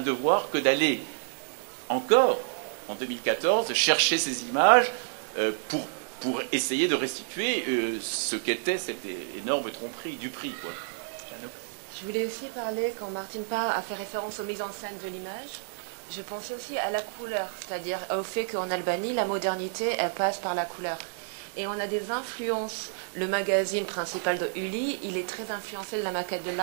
devoir que d'aller encore en 2014, chercher ces images pour essayer de restituer ce qu'était cette énorme tromperie du prix. Je voulais aussi parler, quand Martin Parr a fait référence aux mises en scène de l'image, je pense aussi à la couleur, c'est-à-dire au fait qu'en Albanie, la modernité, elle passe par la couleur. Et on a des influences. Le magazine principal de Uli, il est très influencé de la maquette de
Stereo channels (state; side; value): silent; left; digital silence